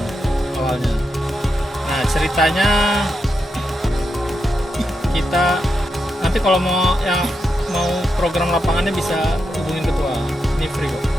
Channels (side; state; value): both; normal; correlation 0.85